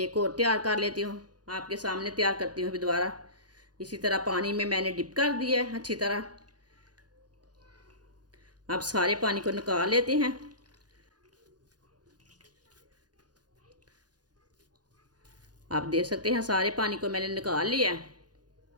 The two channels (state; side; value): late; left; 0.69 ms